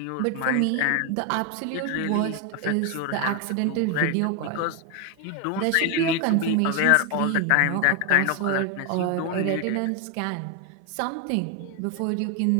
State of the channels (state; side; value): different; both; correlation 0.01